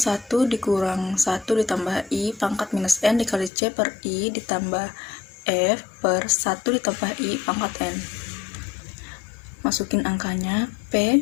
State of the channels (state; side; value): drops out; right; at 3.5 s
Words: dikurang 1 ditambah I pangkat minus N dikali C per I ditambah F per 1 ditambah I pangkat N. Masukin angkanya,